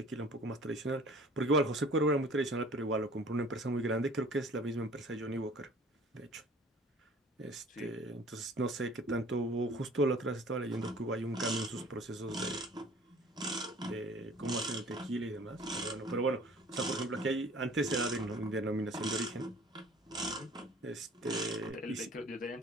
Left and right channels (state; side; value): normal; both; correlation 0.49